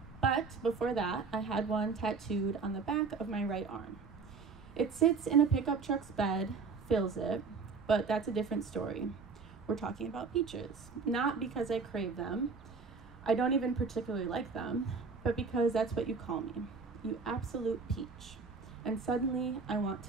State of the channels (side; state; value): left; quieter; 4.9 dB